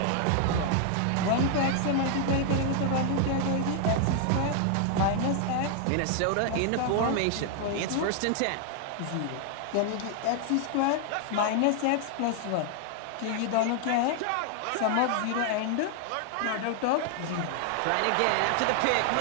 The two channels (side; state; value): both; different; correlation 0.00